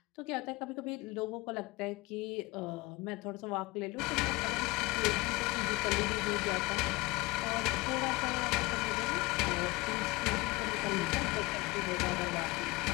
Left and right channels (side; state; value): right; quieter; 22.9 dB